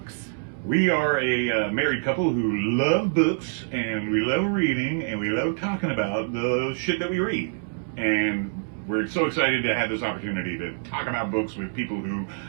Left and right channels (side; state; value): left; silent; digital silence